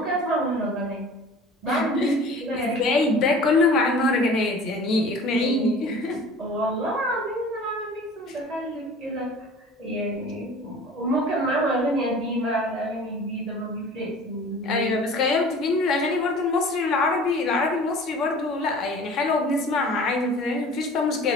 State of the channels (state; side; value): normal; both; correlation 0.44